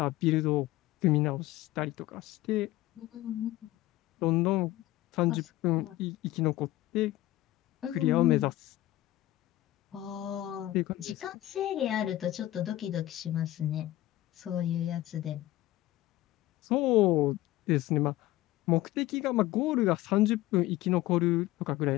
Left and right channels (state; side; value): quieter; right; 15.9 dB